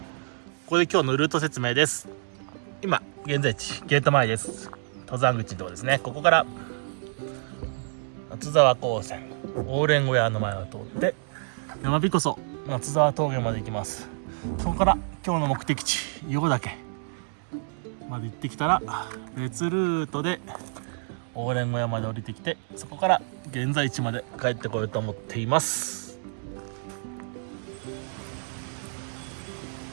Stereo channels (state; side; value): silent; left; digital silence